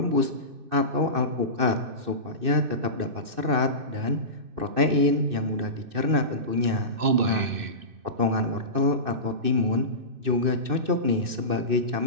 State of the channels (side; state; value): left; late; 2.6 ms